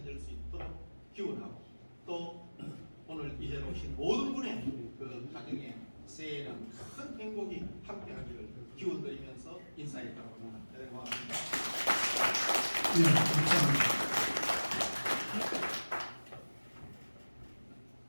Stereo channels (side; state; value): both; inverted; correlation -1.00